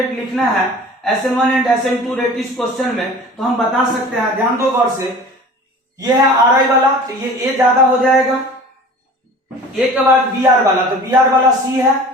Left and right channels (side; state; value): both; normal; correlation 0.42